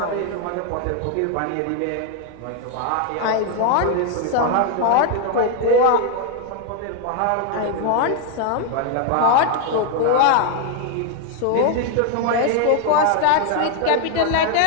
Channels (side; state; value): both; different; correlation 0.01